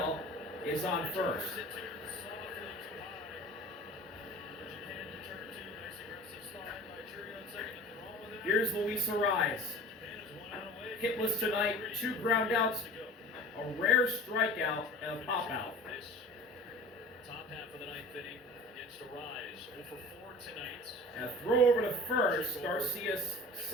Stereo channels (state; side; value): normal; both; correlation 0.41